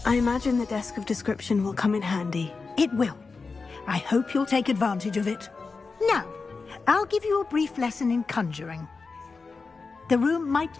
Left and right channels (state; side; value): quieter; right; 4.4 dB